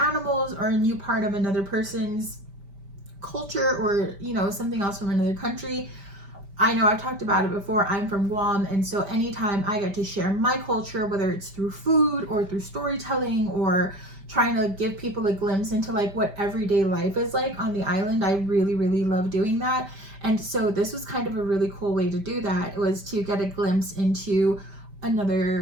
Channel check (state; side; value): late; left; 5.1 ms